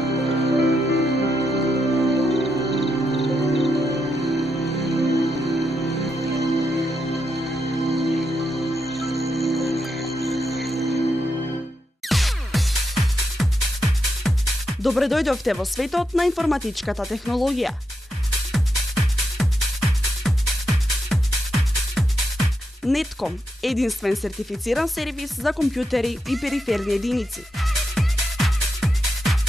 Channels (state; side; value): normal; both; correlation 0.83